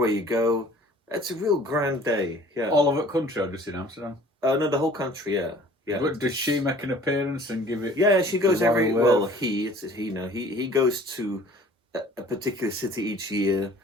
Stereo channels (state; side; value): normal; both; correlation 0.51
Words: you go. It's a real grand day. Yeah. All over the country or just in Amsterdam? No, the whole country. Yeah. Yeah. But does she make an appearance and give it? Yeah, she goes every. Wave? Well, it's he now. He goes to a particular city each year,